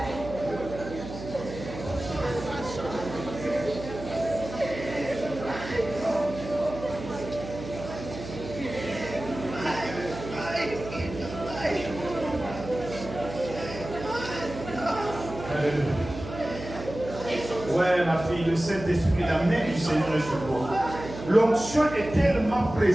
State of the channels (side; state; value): right; noise; hum, 11 dB below the sound